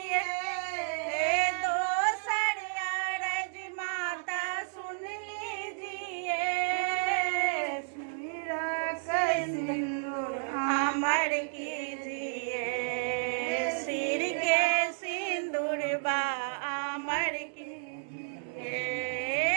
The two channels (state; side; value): silent; left; digital silence